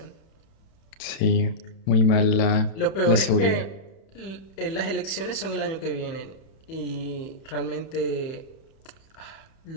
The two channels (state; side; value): late; right; 31 ms